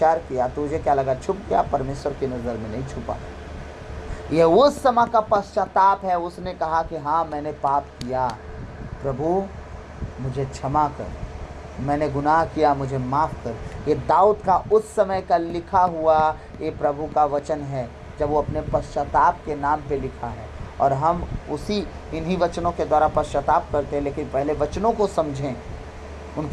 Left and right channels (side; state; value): both; identical; correlation 1.00